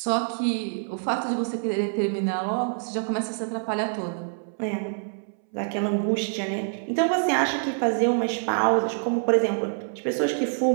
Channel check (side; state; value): left; silent; 61 dB below the other